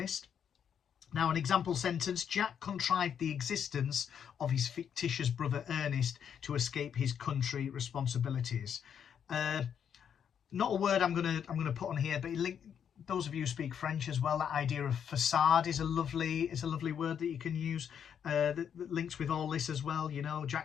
Now, an example sentence: Jack contrived the existence of his fictitious brother Ernest to escape his country responsibilities. Not a word I'm gonna put on here, but those of you who speak French as well, that idea of facade is a lovely word that you can use that links with all this as well. You know,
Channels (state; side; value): quieter; right; 8.2 dB